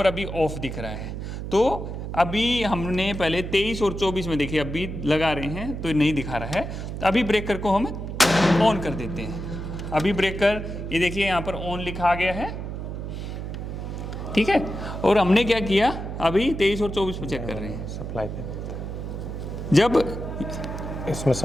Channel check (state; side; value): noise; right; hum, 6 dB below the sound